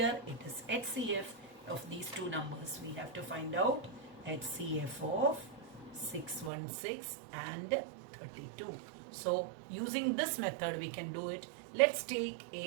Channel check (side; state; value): left; drops out; at 6.5 s